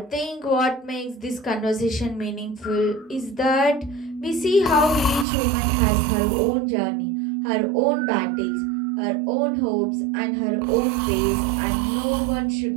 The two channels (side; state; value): left; drops out; at 5.2 s